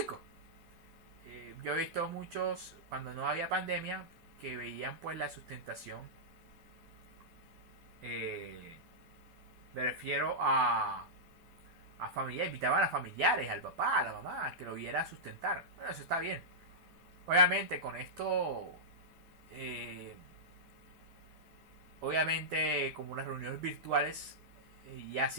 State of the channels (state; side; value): late; left; 12 ms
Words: Yo he visto muchos cuando no había pandemia que veían pues la sustentación. Me refiero a familiares, invitaban a familiares, al papá, a la mamá, que lo viera sustentar. Bueno, eso está bien. Obviamente con esto, obviamente como las reuniones virtuales, y así